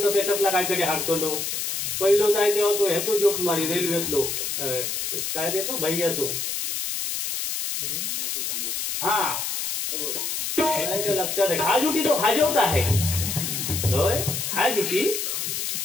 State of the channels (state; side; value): noise; left; hiss, 2 dB below the sound